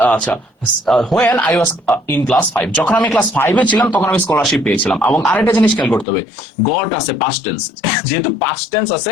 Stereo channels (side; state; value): right; drops out; at 6.1 s